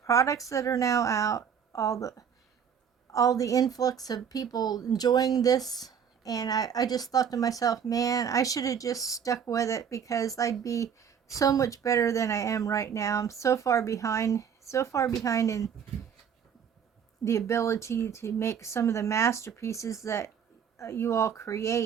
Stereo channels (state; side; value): quieter; left; 7.7 dB